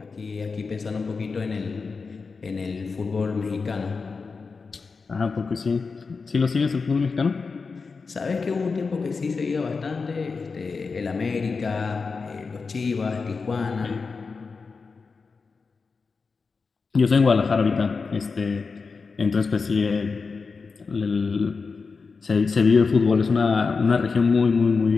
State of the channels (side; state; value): right; quieter; 4.7 dB